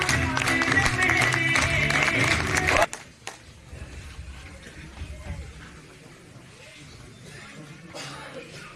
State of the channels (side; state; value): both; identical; correlation 1.00